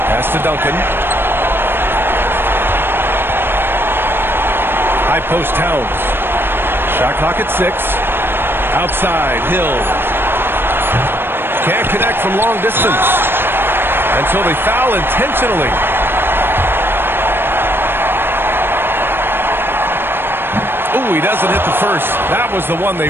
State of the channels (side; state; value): left; late; 0.10 ms